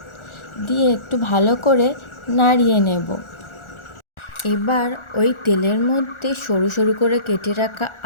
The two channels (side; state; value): right; late; 1.4 ms